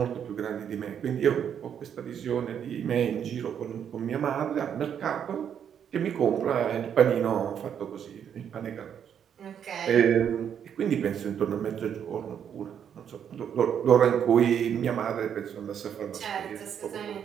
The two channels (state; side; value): quieter; left; 8.5 dB